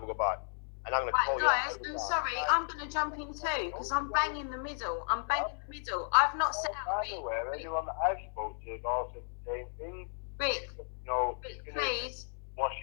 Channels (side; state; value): right; silent; 55 dB below the other